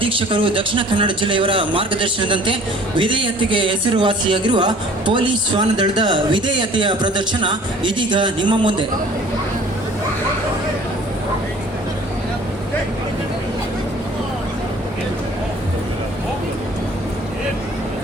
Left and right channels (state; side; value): normal; both; correlation 0.51